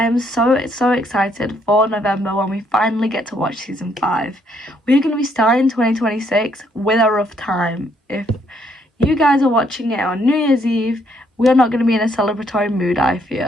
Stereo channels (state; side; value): normal; both; correlation 0.70